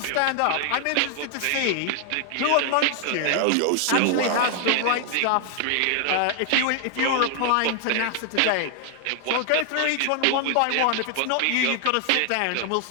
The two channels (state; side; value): different; both; correlation 0.00